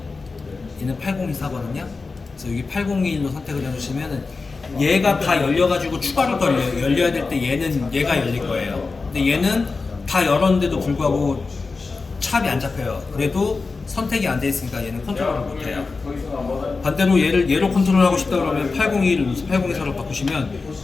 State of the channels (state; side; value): quieter; right; 4.1 dB